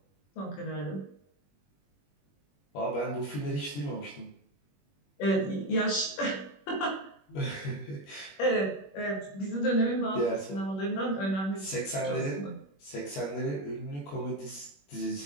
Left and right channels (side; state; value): right; late; 21 ms